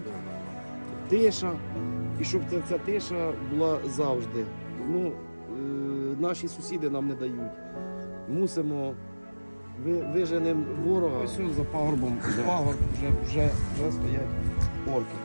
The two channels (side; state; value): both; inverted; correlation -1.00